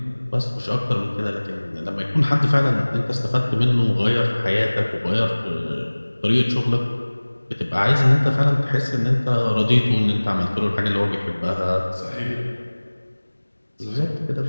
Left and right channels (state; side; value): inverted; both; correlation -1.00